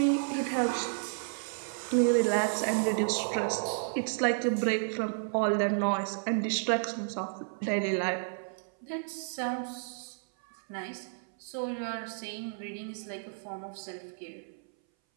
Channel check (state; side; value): silent; left; 57 dB below the other